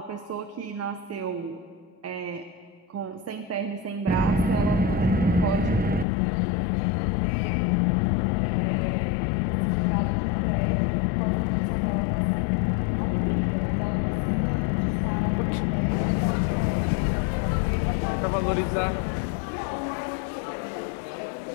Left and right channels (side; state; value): right; drops out; at 6.1 s